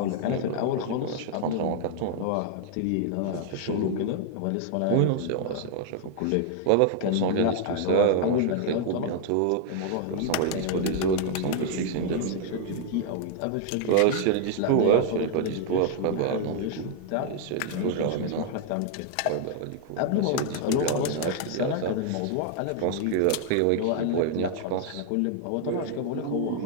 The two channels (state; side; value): different; both; correlation 0.00